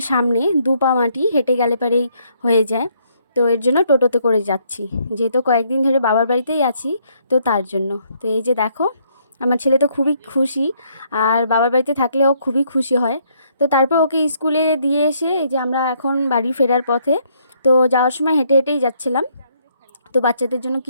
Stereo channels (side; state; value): both; inverted; correlation -0.70